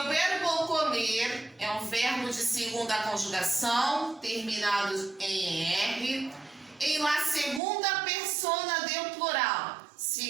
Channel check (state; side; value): drops out; left; at 7.6 s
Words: verbo comer é um verbo de segunda conjugação, terminado em R, em la segunda persona del plural.